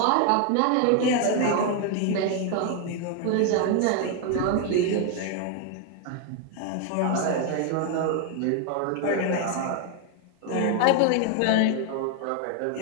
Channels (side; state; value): both; different; correlation 0.01